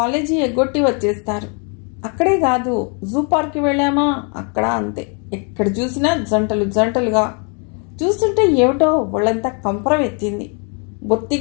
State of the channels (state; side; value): quieter; right; 37.9 dB